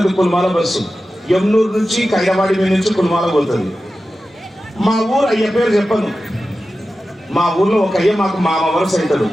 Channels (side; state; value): both; normal; correlation 0.93